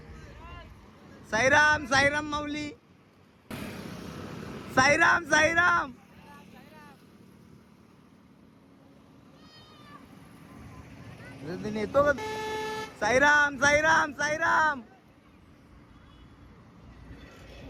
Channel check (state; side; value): identical; both; correlation 1.00